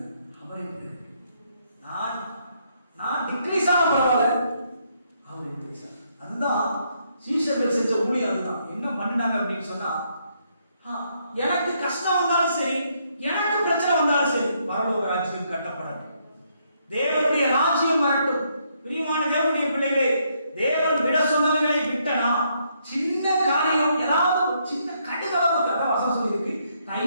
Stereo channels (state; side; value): inverted; both; correlation -0.74